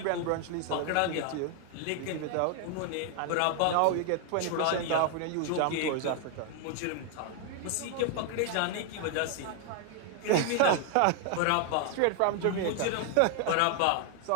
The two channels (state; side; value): different; both; correlation 0.00